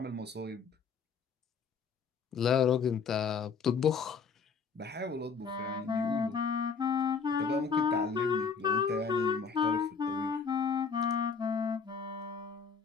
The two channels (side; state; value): right; quieter; 5.7 dB